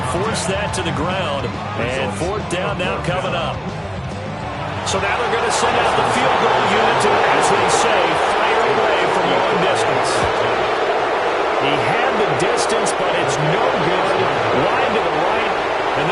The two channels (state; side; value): identical; both; correlation 1.00